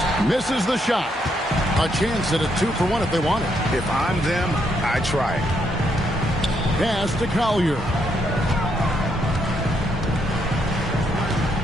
misses the shot. A chance at a 2-for-1 if they want it. If I'm them, I try it. Pass to Collier.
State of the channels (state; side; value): normal; both; correlation 0.76